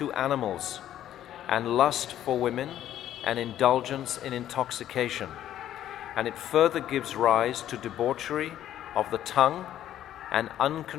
animals and lust for women and indulgence in intoxication. And it further gives rise to debauchery of the tongue and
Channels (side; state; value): right; quieter; 11.8 dB